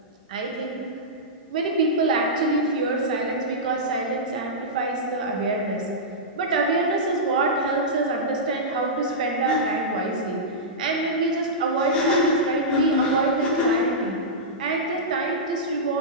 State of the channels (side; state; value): both; normal; correlation -0.14